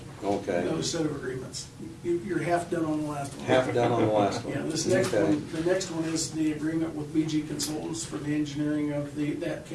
okay. another set of agreements. You're half done on the last one. Half done on the last one. Yeah, this next Okay. one, the next one is the agreement with BG Consultants for the engineering of that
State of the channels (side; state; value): both; identical; correlation 1.00